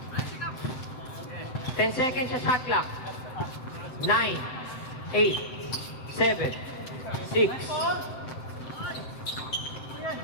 10 seconds sa shot clock. 9, 8, 7, 6,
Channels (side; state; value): right; late; 7.8 ms